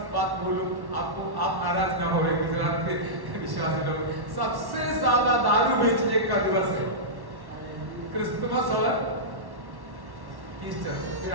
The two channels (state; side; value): late; left; 1.1 ms